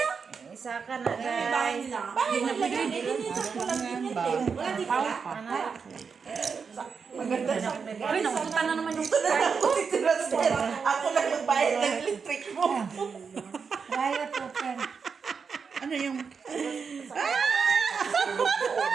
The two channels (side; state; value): left; quieter; 5.7 dB